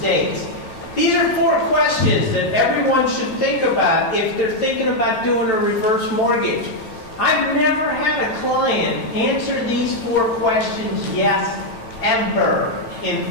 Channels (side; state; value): right; late; 9.0 ms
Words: These are 4 questions that everyone should think about if they're thinking about doing a reverse mortgage. I've never had a client answer these 4 questions yes, ever, in